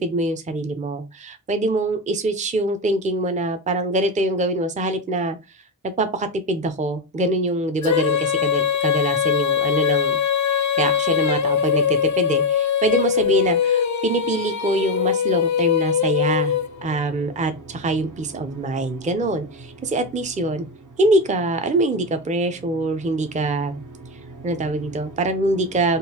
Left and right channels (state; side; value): normal; both; correlation 0.09